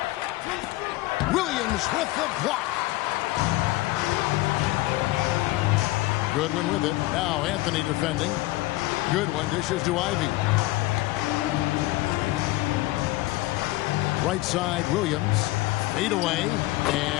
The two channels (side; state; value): right; quieter; 18.9 dB